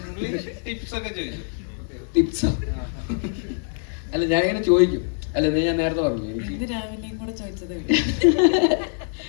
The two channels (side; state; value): right; silent; 63 dB below the other